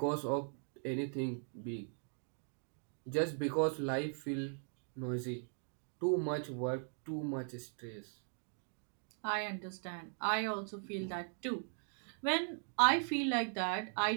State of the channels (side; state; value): left; silent; 52 dB below the other